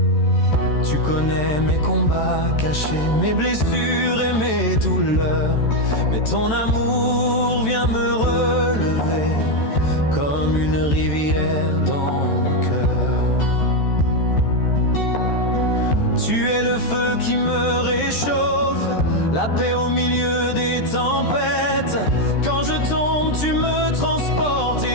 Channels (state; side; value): late; right; 14 ms